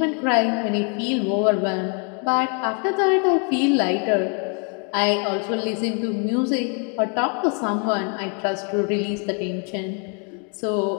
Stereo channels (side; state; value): right; quieter; 37.1 dB